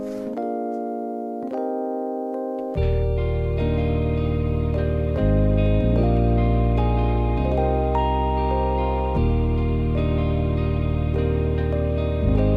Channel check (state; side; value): identical; both; correlation 1.00